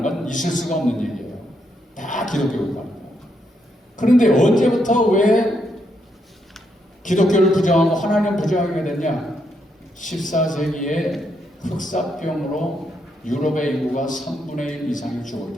건 있을 수가 없는 얘기예요. 다 기독교 국가입니다. 그런데 언제부터 왜 기독교를 부정하고 하나님 부정하게 됐냐? 14세기에 흑사병으로 유럽의 인구가 3분의 1 이상이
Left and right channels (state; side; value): normal; both; correlation 0.78